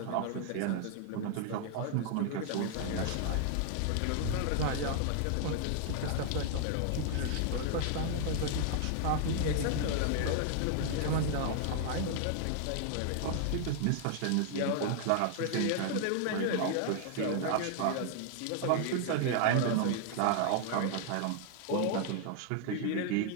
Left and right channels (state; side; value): different; both; correlation 0.00